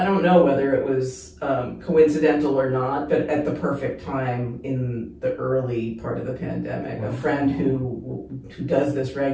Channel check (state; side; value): identical; both; correlation 1.00